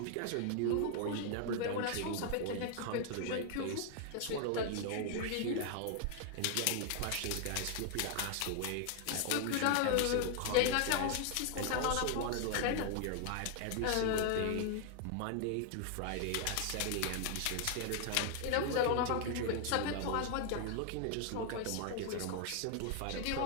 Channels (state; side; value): different; both; correlation 0.00